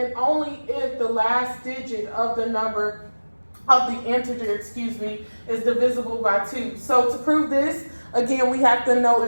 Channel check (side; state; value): both; inverted; correlation -1.00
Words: only if the last digit of the number of the integer, is divisible by 2. So to prove this, again, we have to know